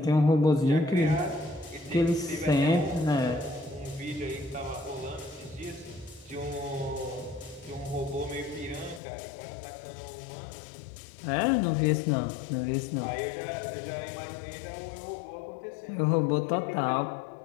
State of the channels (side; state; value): right; drops out; at 9.0 s